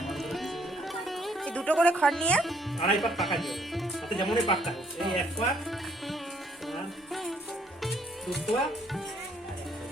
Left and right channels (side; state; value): both; normal; correlation 0.65